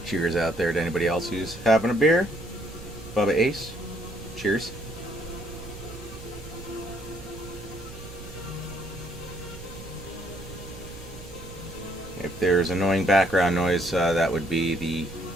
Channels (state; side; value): noise; right; rumble, 14 dB below the sound